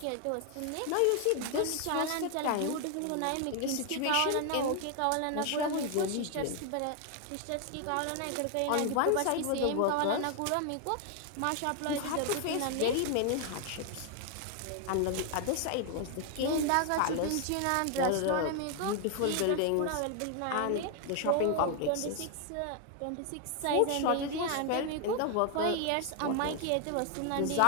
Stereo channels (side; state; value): both; different; correlation 0.00